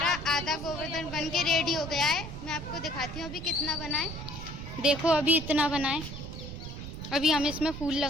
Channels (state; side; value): noise; right; rumble, 9 dB below the sound